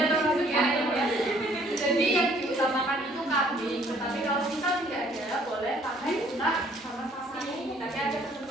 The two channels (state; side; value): normal; both; correlation 0.60